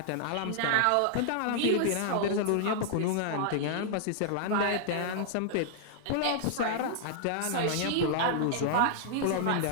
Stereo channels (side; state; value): both; different; correlation -0.01